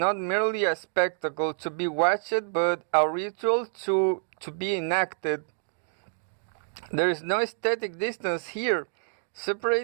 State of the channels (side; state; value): left; silent; digital silence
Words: merely a spectacle to be watched, but a ritual to be enacted. There is no aesthetic distance here,